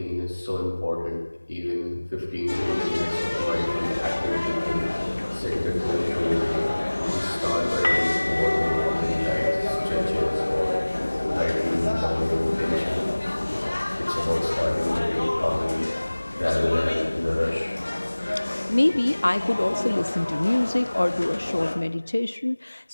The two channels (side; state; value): both; inverted; correlation -1.00